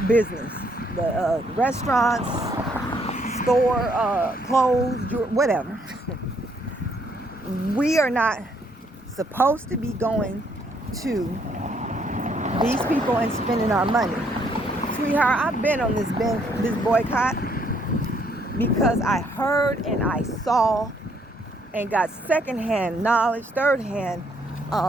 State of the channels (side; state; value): both; normal; correlation 0.69